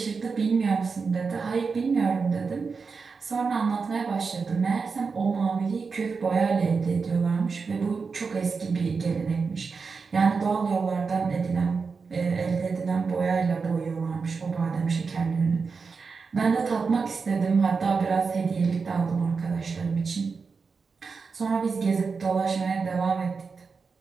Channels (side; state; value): left; quieter; 5.0 dB